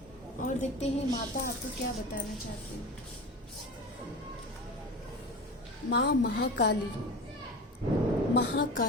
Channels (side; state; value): both; normal; correlation 0.31